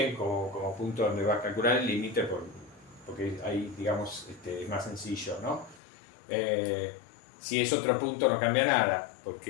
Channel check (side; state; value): right; drops out; at 5.8 s